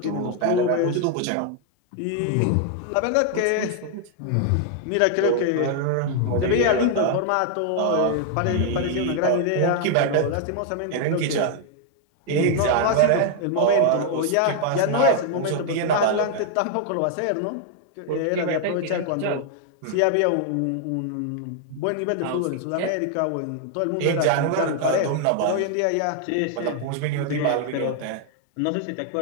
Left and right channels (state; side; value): different; both; correlation 0.00